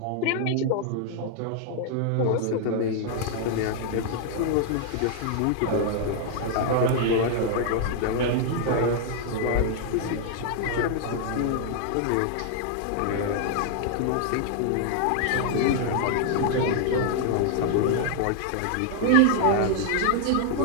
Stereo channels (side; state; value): both; different; correlation 0.00